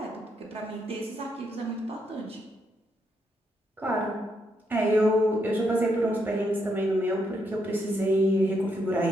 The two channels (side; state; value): both; normal; correlation 0.78